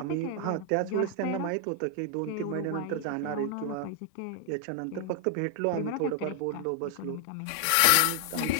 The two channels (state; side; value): different; both; correlation 0.00